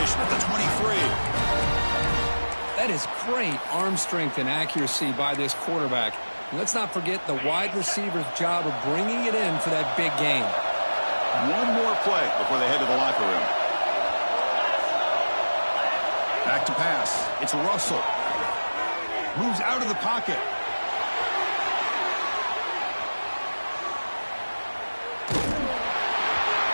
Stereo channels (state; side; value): inverted; both; correlation -1.00